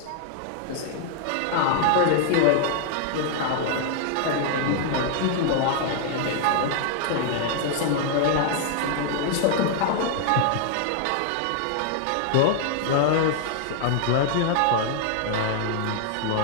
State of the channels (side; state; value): both; different; correlation 0.00